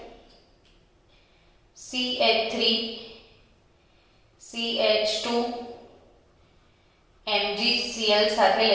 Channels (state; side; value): identical; both; correlation 1.00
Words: CH3 CH2 MgCl સાથે